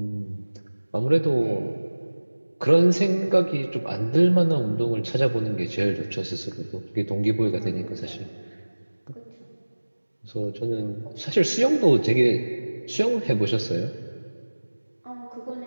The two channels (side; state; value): both; inverted; correlation -1.00